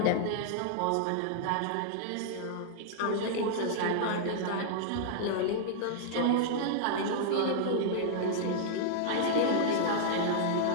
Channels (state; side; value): different; both; correlation -0.01